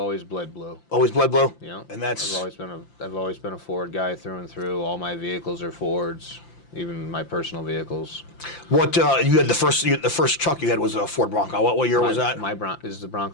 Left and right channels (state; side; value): late; right; 5.8 ms